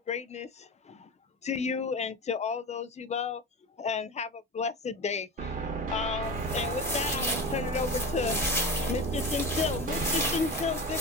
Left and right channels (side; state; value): both; normal; correlation 0.27